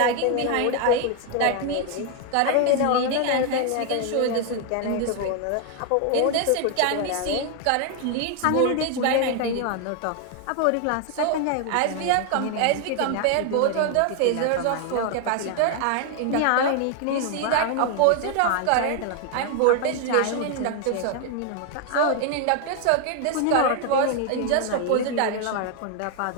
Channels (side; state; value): both; different; correlation 0.00